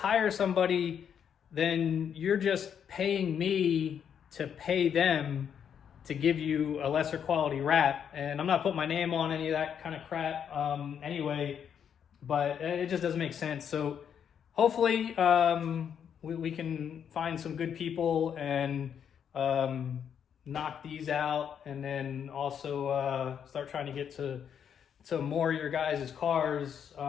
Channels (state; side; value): quieter; right; 8.1 dB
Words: somebody, then you're just paying me to pay them to give you a lesser quality wrap. And I'm not putting my name on any of that kind of crap anyway, but it just doesn't make sense. So hopefully we can find some good people and knock these out, and then also start trying to get to more of your guys' cars.